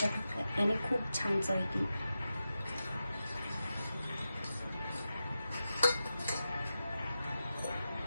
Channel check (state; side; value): inverted; both; correlation -0.91